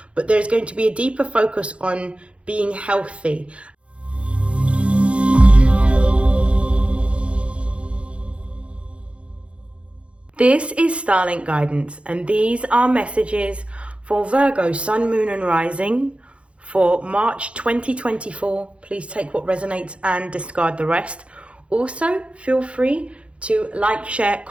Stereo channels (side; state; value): left; late; 0.061 ms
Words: but there's going to be a deeper focus on being healthy. This is StarLink guidance, and these are messages for Virgo, Sun, Moon and Rising for March 2024. Please take what resonates and discard the rest. Also, feel free to like, share,